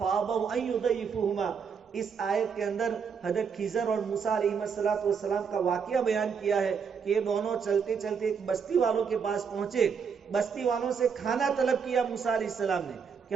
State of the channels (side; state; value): left; quieter; 6.4 dB